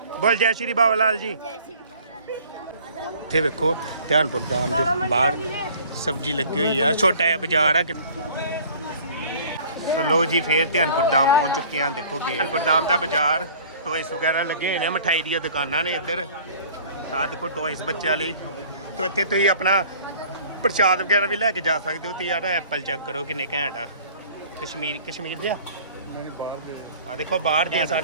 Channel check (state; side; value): inverted; both; correlation -0.50